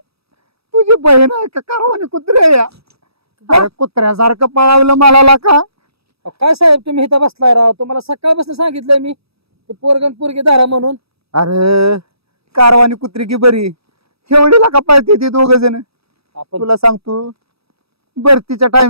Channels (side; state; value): left; late; 0.77 ms